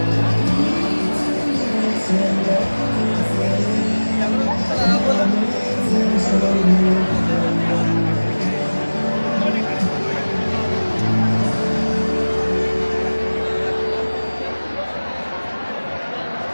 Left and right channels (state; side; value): inverted; both; correlation -1.00